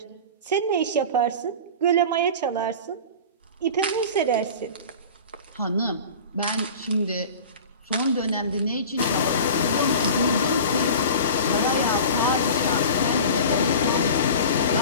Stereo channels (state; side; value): inverted; both; correlation -0.35